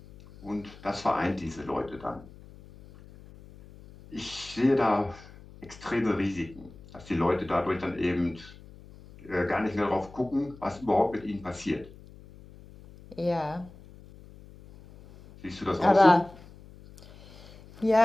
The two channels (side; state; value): left; noise; hum, 20 dB below the sound